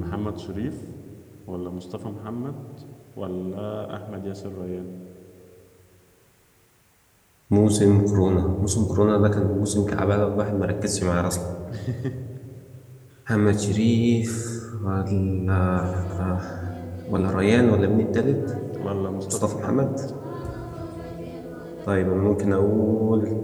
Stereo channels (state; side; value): identical; both; correlation 1.00